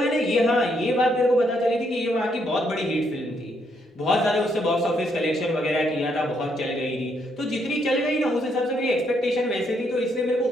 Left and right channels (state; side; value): normal; both; correlation 0.74